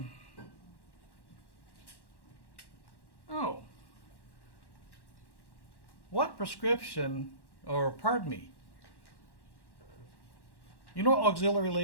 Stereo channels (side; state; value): right; late; 1.1 ms